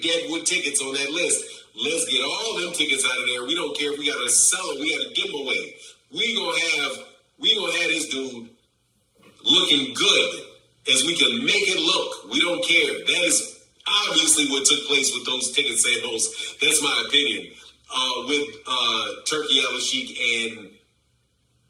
deadwood tickets on that list. Let's get all them tickets out of there. We don't care if we gotta sell it. We gotta give them away. We gonna have this dude looking good as we can make it look. We don't care. That is obviously what took place with those ticket sales. That's my opinion. With Turki Al-Sheikh and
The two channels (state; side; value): identical; both; correlation 1.00